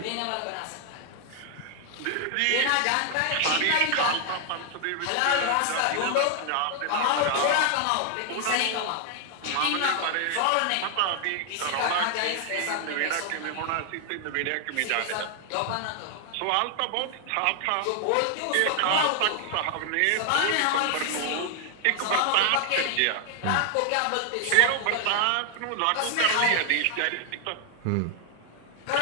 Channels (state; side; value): different; both; correlation 0.00